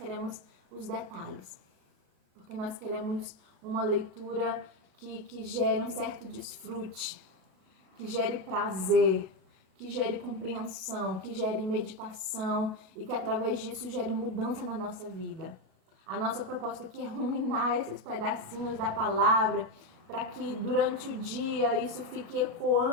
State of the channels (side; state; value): left; late; 37 ms